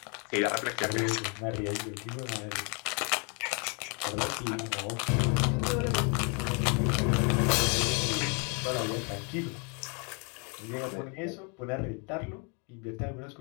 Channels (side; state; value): right; quieter; 35.2 dB